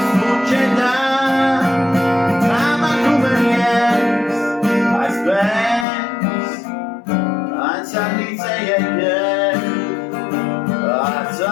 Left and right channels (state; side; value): drops out; right; at 5.9 s